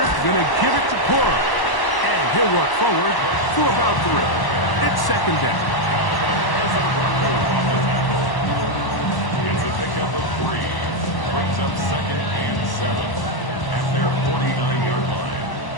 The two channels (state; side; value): late; right; 1.0 ms